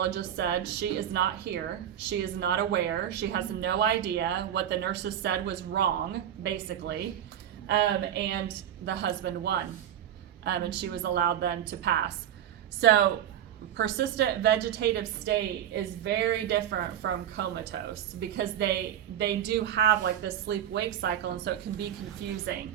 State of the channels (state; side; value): quieter; left; 10.4 dB